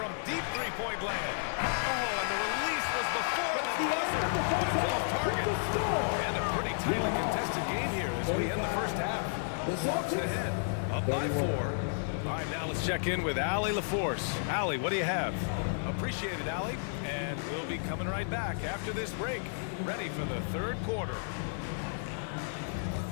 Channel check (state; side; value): silent; right; digital silence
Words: deep three-point land. Oh, and the release was before the buzzer, but it's off target. And a pretty tightly contested game here as we end the first half. Hawks ahead, up by 4. All right, now let's check in with Allie LaForce. Allie, what do you have? Appreciate it, Allie. And we'll be coming right back after this break, ready for the third quarter.